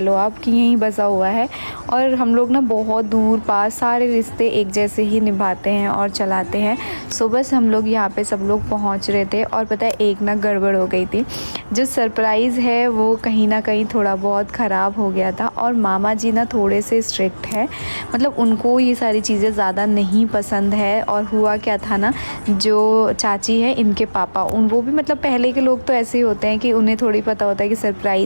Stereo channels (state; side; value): inverted; both; correlation -1.00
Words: आप कि यहीं बसा हुआ है। और हम लोग ना बहुत दूर पास सारे रिश्ते एक जैसे ही निभाते हैं और चलाते हैं। सो बस हम लोग यहाँ पे सब लोग पहुँच रहे थे और पता है एक ना गड़बड़ हो गई थी। जो सरप्राइज़ है वो कहीं ना कहीं थोड़ा बहुत ख़राब हो गया था। और मामा जी ना थोड़े से स्ट्रिक्ट है, मतलब उनको ये सारी चीज़ें ज़्यादा नहीं पसंद है। और हुआ क्या था ना, जो चाची है इनके पापा, वो भी मतलब पहले के लोग तो ऐसे ही होते हैं कि उन्हें थोड़ी पता होता है कि